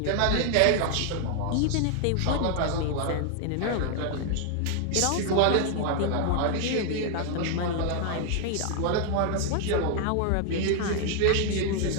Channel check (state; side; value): different; both; correlation 0.00